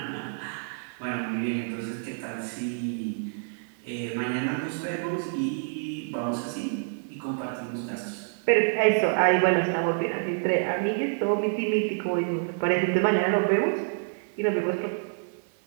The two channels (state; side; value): silent; left; digital silence